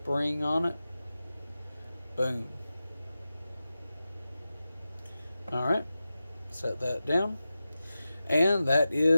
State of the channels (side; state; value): both; inverted; correlation -0.93